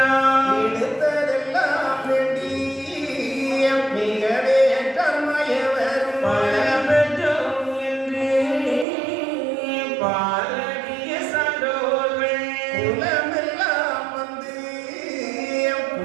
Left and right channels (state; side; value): drops out; left; at 8.8 s